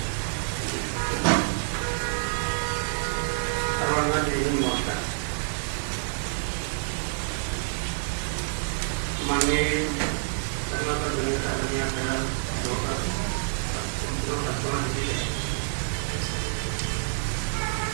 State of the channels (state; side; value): silent; left; digital silence